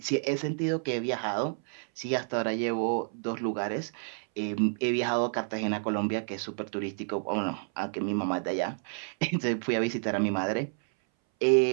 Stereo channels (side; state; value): left; silent; 58 dB below the other